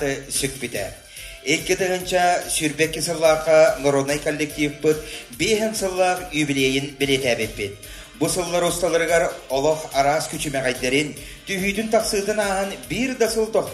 сүк біді. 2 сүрбекке сыллаққа народный коллектив бұд 5 сыллақ юбилейін білетәбет бет. Бұл сыллар ұсталырғар олық арас күчімәғайдерін түйүйдің тақсыдың ағын бір дасыл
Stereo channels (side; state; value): both; identical; correlation 1.00